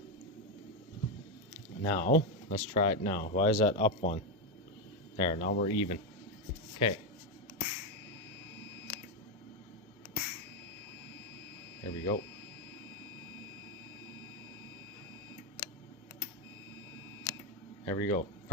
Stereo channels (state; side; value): normal; both; correlation 0.07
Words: Now, let's try it now. Why is that up one? There, now we're even. Okay. There we go. There we go.